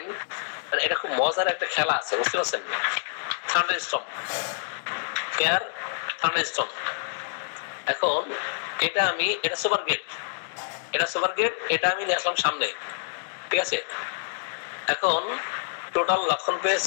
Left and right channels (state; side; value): silent; right; digital silence